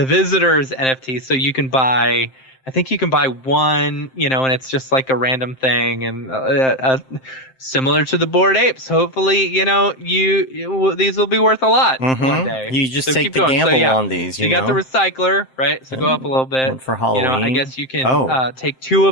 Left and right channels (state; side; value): late; right; 7.7 ms